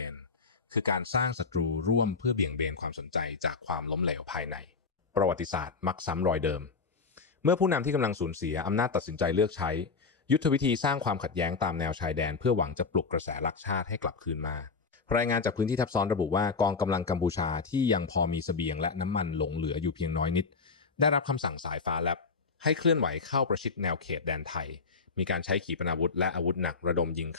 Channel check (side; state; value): right; quieter; 4.7 dB